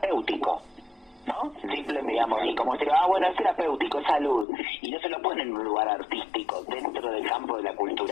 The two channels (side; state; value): right; drops out; at 4.5 s